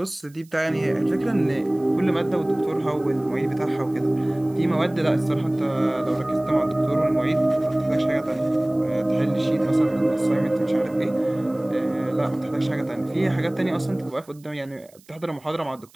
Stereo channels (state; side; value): noise; right; hiss, 28 dB below the sound